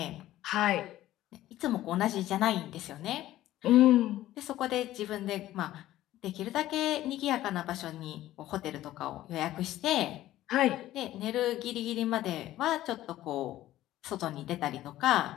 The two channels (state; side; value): quieter; right; 14.5 dB